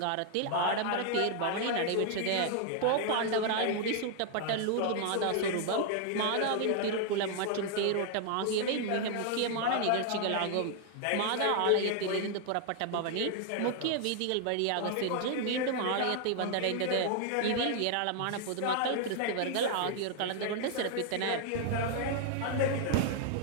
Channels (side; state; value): both; different; correlation 0.00